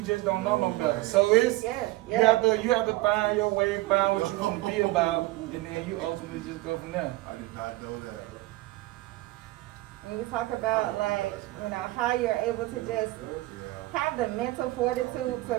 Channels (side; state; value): left; quieter; 19.0 dB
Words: just don't know no better. So it's you have to find your way, find what you want to be about, and then you ultimately just go from there. I did not know that. When you talk about like, you know, how you're able to just have the mental fortitude